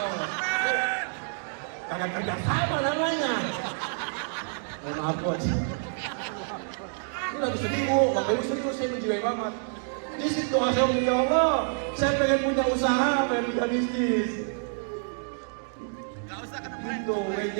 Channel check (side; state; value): left; silent; digital silence